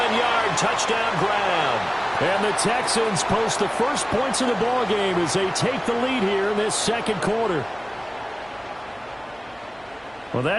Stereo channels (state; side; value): noise; right; hum, 28 dB below the sound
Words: touchdown grab. And the Texans post the first points of the ball game as they take the lead here in this second quarter. Well,